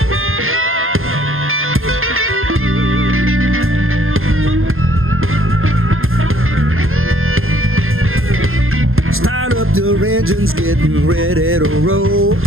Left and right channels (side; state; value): left; late; 0.60 ms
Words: up the engines, getting ready to roll.